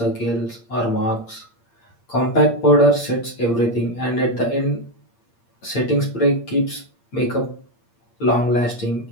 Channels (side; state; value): right; late; 8.6 ms